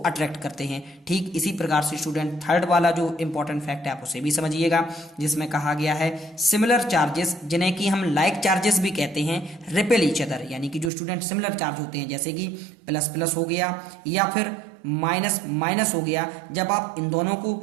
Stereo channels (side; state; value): left; drops out; at 10.9 s